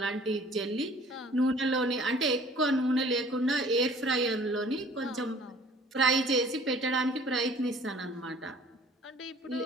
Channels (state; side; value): normal; both; correlation 0.51